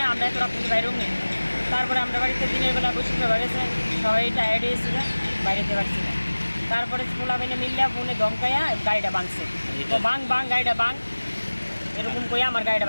আমরা এত রাত্রে বাইরেও নেই তারপরে আমরা বাড়িতে দিনের বেলা বসে বেড়েছে সবাই টায়ার্ড হয়েছিল বাইরেতে পারছি না তারপরে খোলা বেনে মিললে ফোনে দমকাইয়া গাড়িটা ভাঙছে তো বাং গাড়িটা বাং এরকম করে আমার গাড়িটা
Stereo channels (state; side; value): inverted; both; correlation -1.00